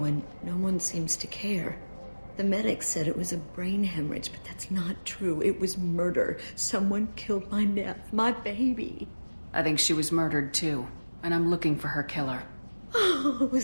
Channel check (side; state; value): both; inverted; correlation -1.00